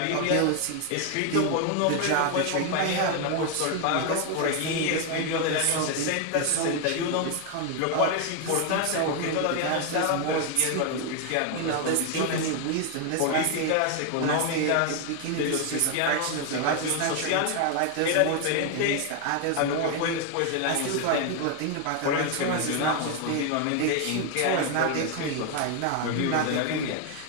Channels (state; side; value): different; both; correlation 0.01